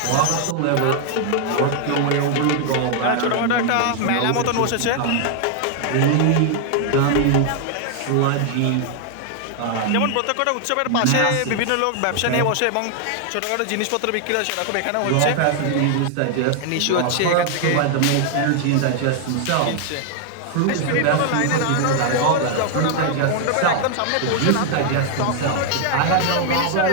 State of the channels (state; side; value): different; both; correlation 0.00